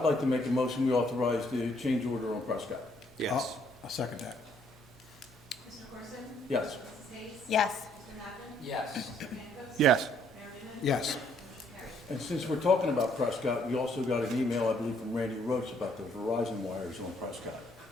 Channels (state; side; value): normal; both; correlation 0.67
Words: like to make a motion, we authorize the change order on Prescott. Yes. I'll second that. Mr. Corson? Yes. Mrs. Hayes? Yes. Mr. Napoli? Yes. Mr. Pankos? Yes. Mayor Newman? Yes. Motion carries. And since we're talking about Prescott, we also got an email, I believe, from Randy Roach about the Verizon wires on Prescott.